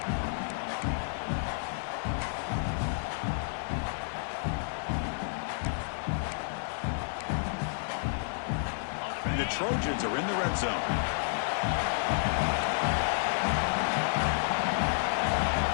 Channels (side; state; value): right; silent; 57 dB below the other